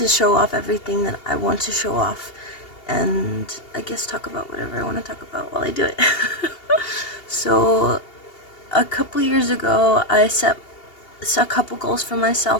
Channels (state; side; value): late; right; 2.8 ms